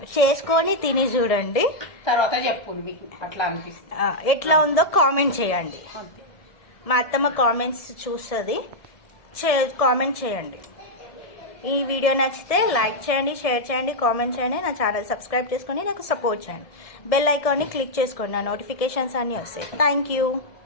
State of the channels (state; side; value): late; right; 1.7 ms